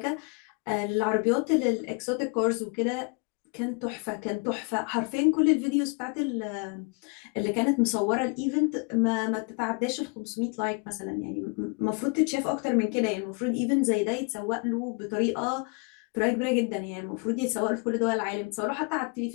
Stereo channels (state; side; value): quieter; right; 33.4 dB